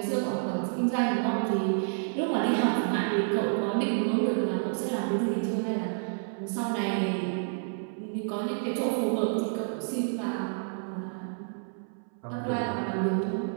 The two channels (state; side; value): silent; left; 58 dB below the other